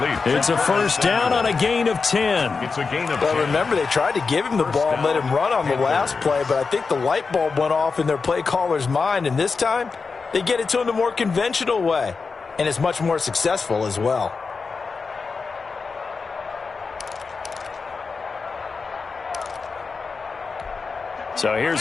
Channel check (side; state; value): right; quieter; 4.7 dB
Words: It's a first down on a gain of 10. It's a gain of 10. Well, remember, they tried to give him the ball and let him run on the last play, but I think the light bulb went off in their play caller's mind, and this time they get it to him the more conventional way, and it's much more successful as well. So